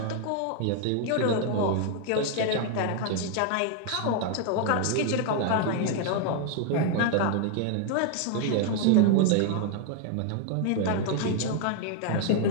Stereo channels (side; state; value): both; different; correlation 0.00